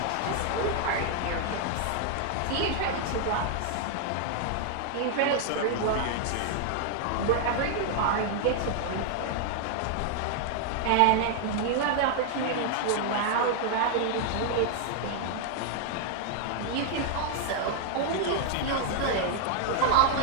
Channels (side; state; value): both; different; correlation 0.00